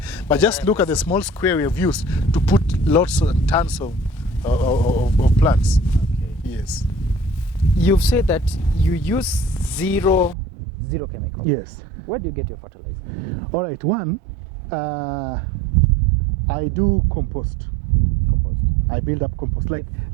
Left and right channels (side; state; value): left; drops out; at 10.4 s